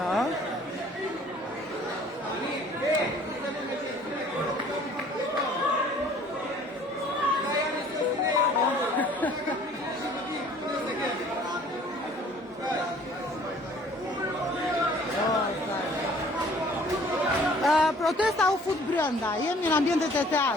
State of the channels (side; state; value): both; normal; correlation 0.54